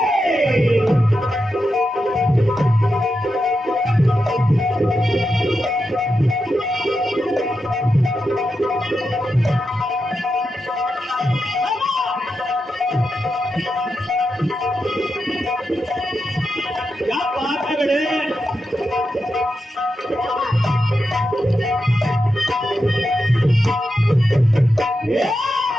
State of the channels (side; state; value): both; normal; correlation 0.88